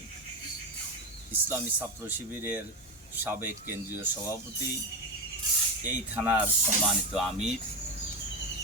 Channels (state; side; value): normal; both; correlation 0.15